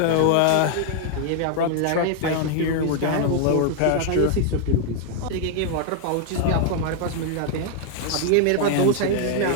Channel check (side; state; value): both; different; correlation 0.00